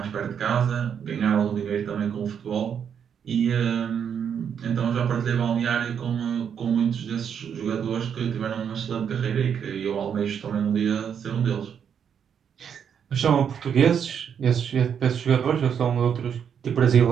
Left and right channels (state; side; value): quieter; left; 7.9 dB